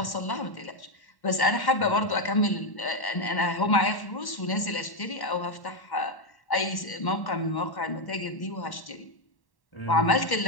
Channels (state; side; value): late; right; 1.1 ms